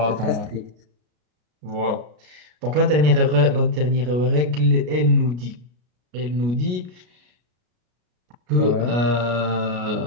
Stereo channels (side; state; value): left; late; 33 ms